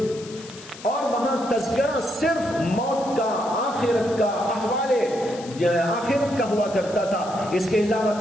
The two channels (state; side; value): noise; left; hiss, 17 dB below the sound